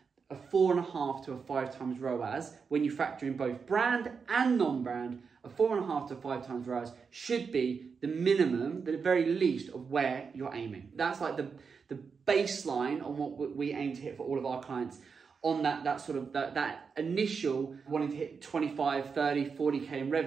a 4.5 to a 5 times ROAS. When you factor in both brand and non-brand, a 4.5 to 5 times ROAS should be the minimum, the very least of where you're aiming. That's like the baseline on what we aim to hit for all of our clients. On that initial wanting to hit 25, 30, 40k in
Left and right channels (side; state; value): left; quieter; 5.6 dB